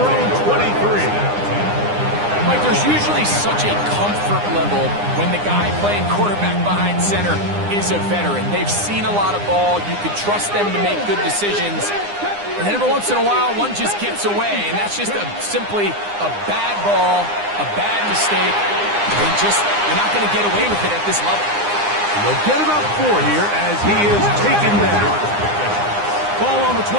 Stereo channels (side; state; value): left; late; 9.8 ms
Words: own 23. Mike, there's usually such a comfort level when the guy playing quarterback behind center is a veteran. They've seen a lot of ball. You can trust them to make good decisions. And then every once in a while, one just gets away, and that's just simply a bad ball, a bad mistake. You're not going to get away with it at this level. They'll get about 4 here as he is taken down. Ball on the